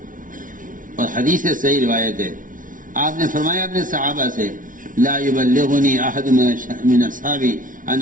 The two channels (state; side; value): late; left; 0.38 ms